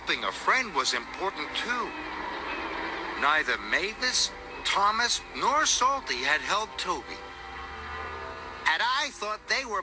a friend was important too. Neither Mavis, Thomas, nor Salty had helped Toby. And I thought they were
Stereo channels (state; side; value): identical; both; correlation 1.00